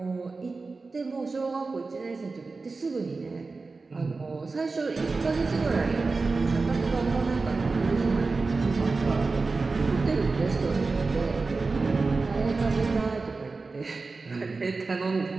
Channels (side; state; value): left; quieter; 4.0 dB